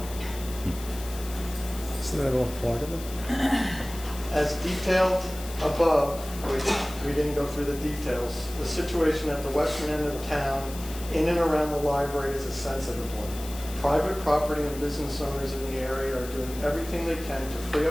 Isn't that all part of it? As detailed above, which we didn't go through the details, the situation at the western end of town, in and around the library, is a sensitive one. Private property and business owners in the area are doing everything they can to free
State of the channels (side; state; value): left; noise; hiss, 14 dB below the sound